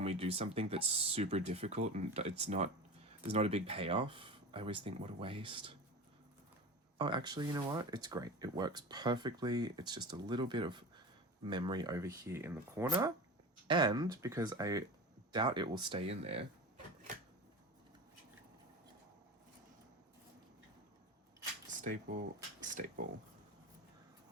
we do something that's super difficult and there's not a big payoff. I always think, what a waste. Oh, actually, you know what? It's great. It works perfectly. It's just a little bit of memory over here in the corner. And because I doubt it will stay in there, staple, staple.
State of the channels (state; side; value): normal; both; correlation 0.30